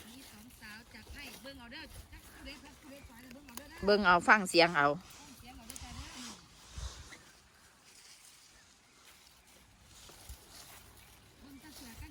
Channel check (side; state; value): both; identical; correlation 1.00